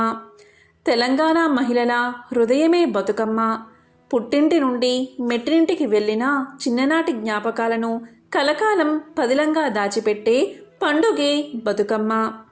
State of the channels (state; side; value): identical; both; correlation 1.00